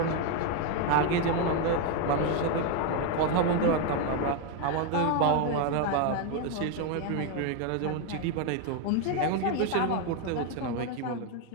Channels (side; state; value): both; different; correlation 0.01